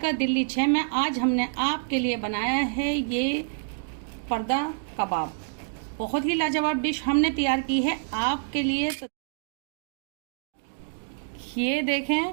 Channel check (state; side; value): silent; left; digital silence